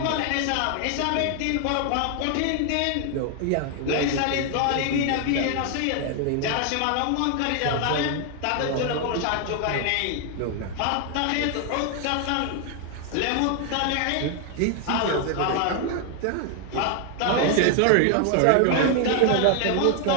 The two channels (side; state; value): both; different; correlation 0.00